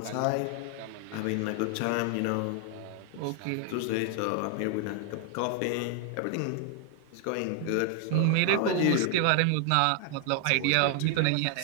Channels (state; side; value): different; both; correlation 0.00